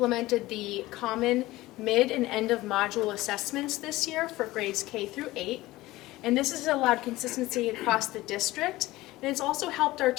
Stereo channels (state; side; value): quieter; right; 18.2 dB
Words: the common mid and end of module assessments this year for grades K through 8. And this has allowed consistency across the district, and it's also helped our